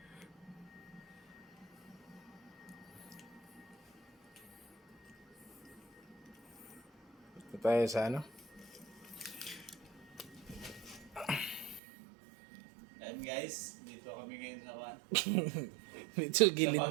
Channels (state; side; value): drops out; left; at 11.8 s